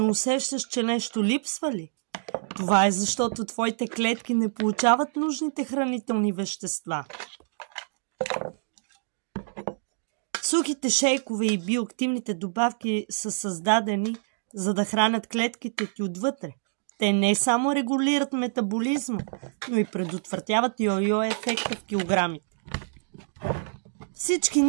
усещаш, че нещо липсва ли? Това е защото твоите клетки не получават нужните хранителни вещества. Сухите шейкове и биоактивните добавки са създадени, за да хранят клетките ти отвътре. Те не само регулират метаболизма, но и предотвратяват йо-йо ефекта в килограмите. Всички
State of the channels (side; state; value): left; silent; digital silence